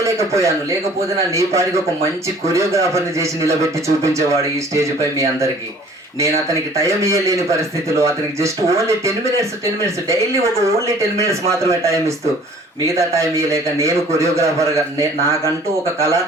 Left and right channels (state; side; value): normal; both; correlation 0.52